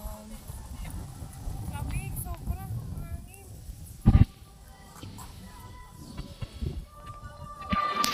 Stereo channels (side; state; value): both; identical; correlation 1.00